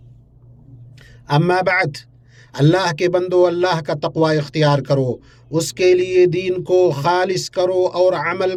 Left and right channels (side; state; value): both; identical; correlation 1.00